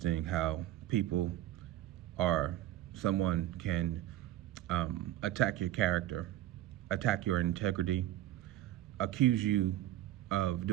how people or someone can attack your character, attack your integrity, accuse you of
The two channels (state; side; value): quieter; left; 13.8 dB